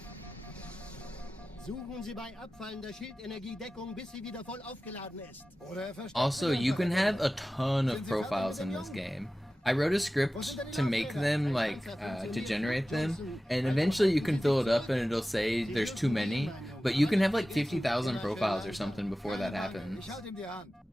Suchen Sie bei abfallender Schildenergiedeckung, bis sie wieder voll aufgeladen ist. Also, you can have a ton of profiles in this game. I wrote a script to make them, like, to generate them, and eventually you can fill it up and it'll say there's too many, but you can have like 50,000 profiles or something before that happens.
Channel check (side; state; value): both; normal; correlation 0.95